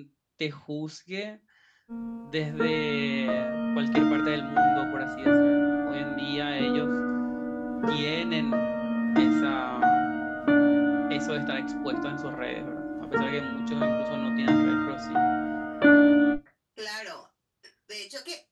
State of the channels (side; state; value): both; identical; correlation 1.00